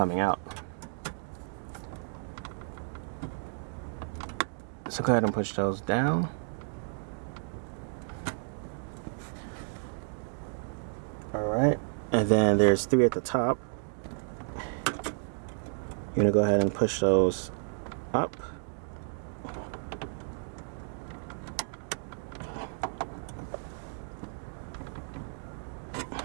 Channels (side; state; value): left; silent; digital silence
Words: out. So go ahead and push those down. Alright, and then there's 3 at the top. You're gonna go ahead and push those up.